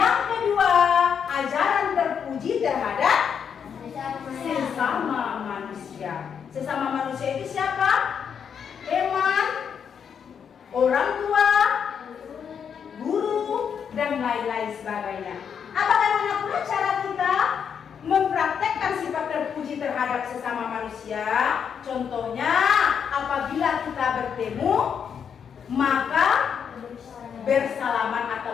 kedua, ajaran terpuji terhadap sesama manusia. Sesama manusia itu siapa? Teman, orang tua, guru, dan lain-lain sebagainya. Bagaimana pula cara kita mempraktekkan sifat terpuji terhadap sesama manusia? Contohnya, apabila kita bertemu, maka bersalaman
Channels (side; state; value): right; quieter; 7.4 dB